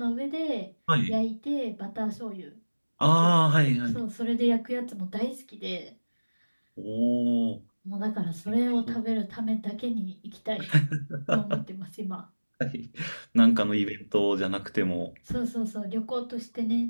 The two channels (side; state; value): both; inverted; correlation -1.00